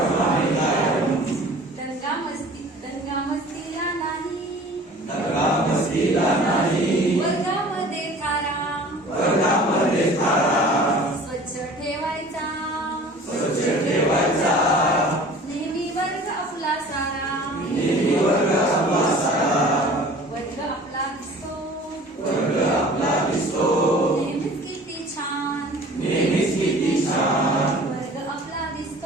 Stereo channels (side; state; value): both; normal; correlation 0.45